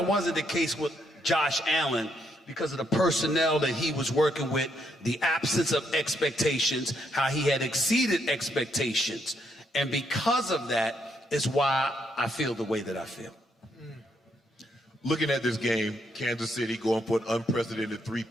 wasn't the case with Josh Allen because of the personnel that he was working with, the absence of expectations, how he had exceeded expectations. And because of that is why I feel the way that I feel. Looking at this game, Kansas City going for an unprecedented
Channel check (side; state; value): both; normal; correlation 0.75